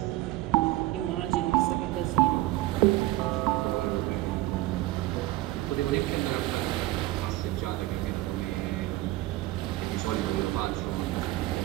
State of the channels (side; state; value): left; quieter; 17.3 dB